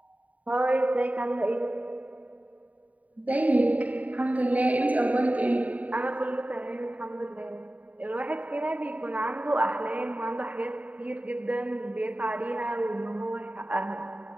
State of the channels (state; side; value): late; left; 0.070 ms